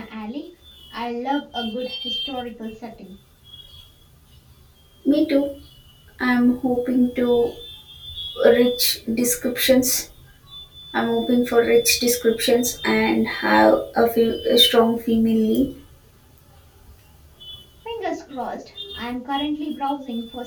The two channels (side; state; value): both; identical; correlation 1.00